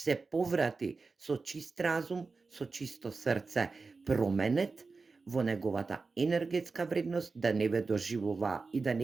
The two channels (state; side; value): quieter; left; 4.2 dB